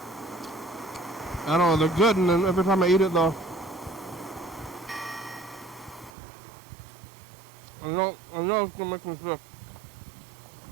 don't know, they're good, and then every time I eat it, though, I know it's gonna make me sick.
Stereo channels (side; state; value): left; drops out; at 6.1 s